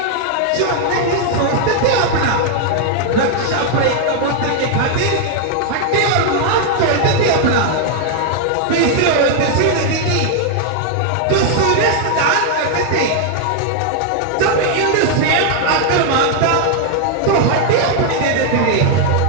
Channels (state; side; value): different; both; correlation 0.00